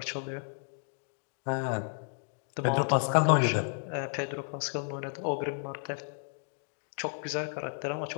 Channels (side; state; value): right; silent; 56 dB below the other